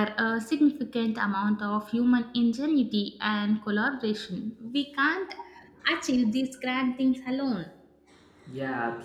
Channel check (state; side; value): identical; both; correlation 1.00